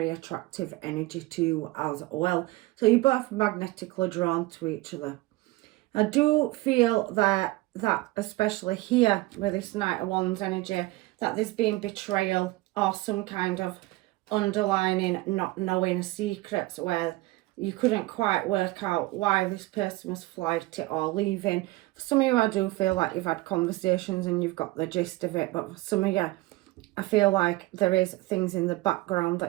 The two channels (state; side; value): quieter; left; 20.2 dB